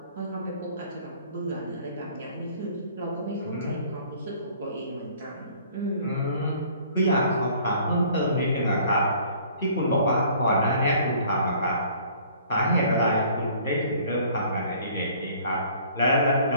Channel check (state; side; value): inverted; both; correlation -0.54